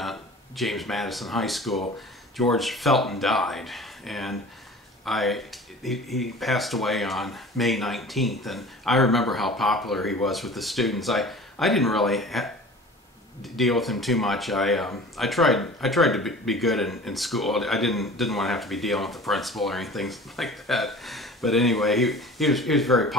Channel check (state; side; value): normal; both; correlation 0.42